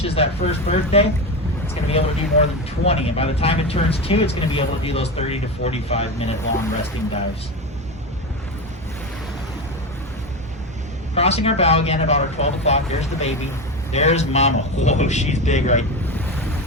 that first birthday, it's going to be able to do more than 20. And by the time it turns 2, it's going to be able to do those 30 to 45 minute long resting dives. Crossing our bow again about our 12 o'clock. There's the baby. There's mama. Whoa, she's big, right?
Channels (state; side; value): normal; both; correlation 0.20